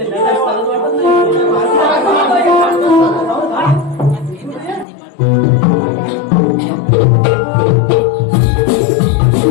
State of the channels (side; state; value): right; drops out; at 4.9 s